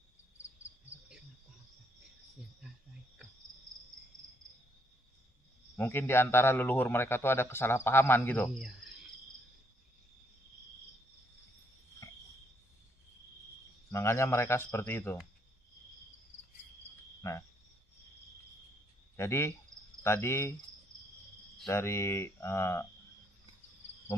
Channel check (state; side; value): normal; both; correlation 0.71